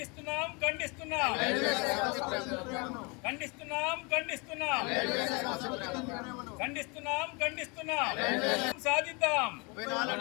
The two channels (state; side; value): quieter; right; 30.3 dB